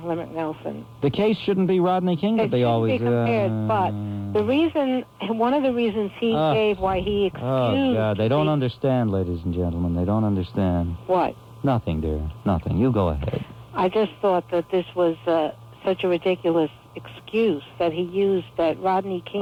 The case shouldn't be Rodney King, but they always... Be compared, but one of the reasons he gave why he excused... Oh, God, they don't understand, ladies and gentlemen. They don't understand. What? Nothing, dear. Nothing. You go ahead. I just thought that this was such a ridiculous excuse that he used, that Rodney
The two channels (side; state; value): both; identical; correlation 1.00